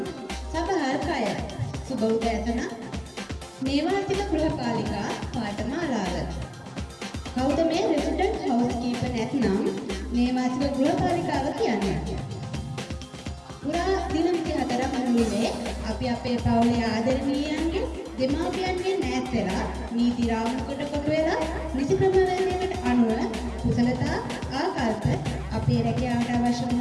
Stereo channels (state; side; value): identical; both; correlation 1.00